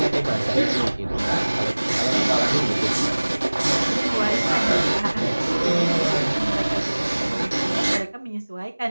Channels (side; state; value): both; inverted; correlation -1.00